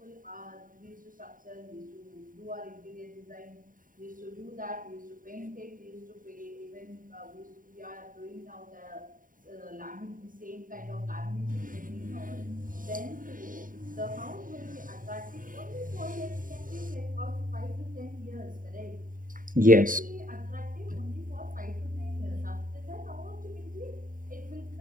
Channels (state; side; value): late; left; 0.39 ms